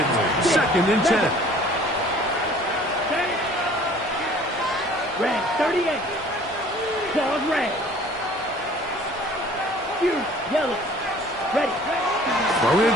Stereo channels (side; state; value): both; normal; correlation 0.51